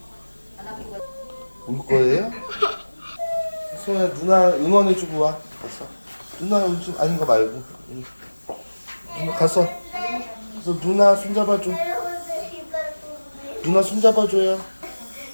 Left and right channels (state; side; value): inverted; both; correlation -1.00